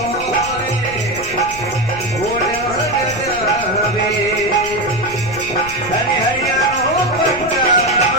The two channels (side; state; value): left; noise; rumble, 14 dB below the sound